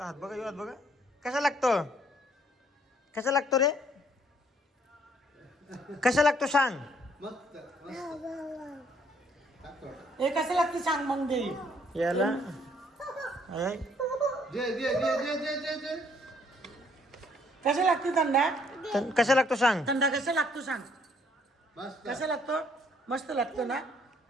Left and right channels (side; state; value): both; normal; correlation 0.65